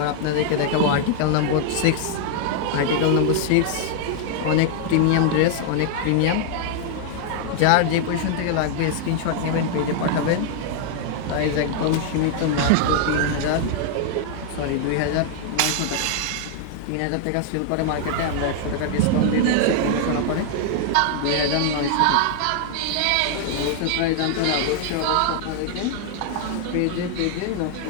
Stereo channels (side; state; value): both; different; correlation 0.00